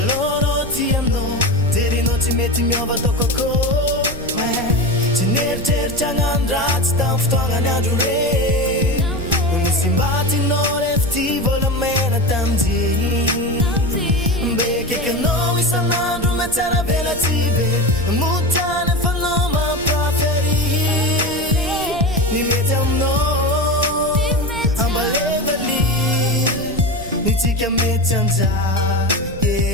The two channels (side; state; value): right; noise; rumble, 13 dB below the sound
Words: tiamno terino tsy mety miova tokoko tsy neritreritra gnandratsy tam fotoagnany andro re misy mbatinao refty volamena tamjeny mbekekanao isan'andro matsara velatsy be motany fanao mampaferi ny mety aminao ambalevali nitsika mety anja